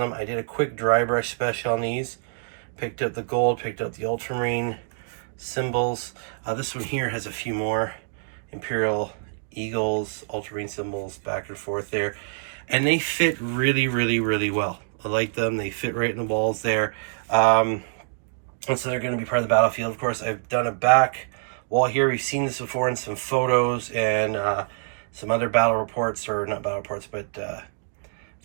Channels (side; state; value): left; silent; digital silence